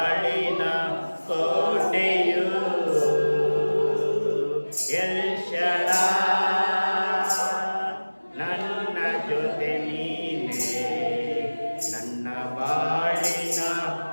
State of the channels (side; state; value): both; inverted; correlation -1.00